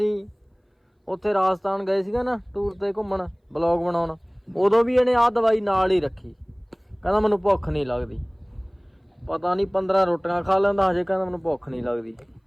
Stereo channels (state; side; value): identical; both; correlation 1.00